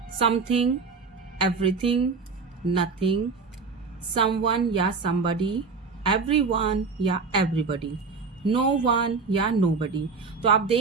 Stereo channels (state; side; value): quieter; left; 4.7 dB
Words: something, everything, nothing, someone या somebody, everyone या everybody, नो वन या nobody. तो आप